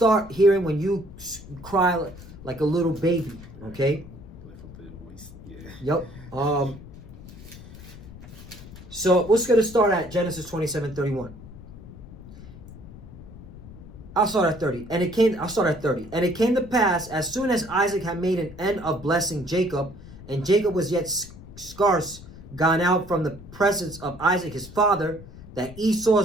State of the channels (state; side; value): noise; left; rumble, 16 dB below the sound